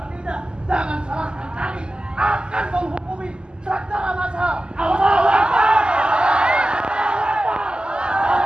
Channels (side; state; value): left; late; 0.047 ms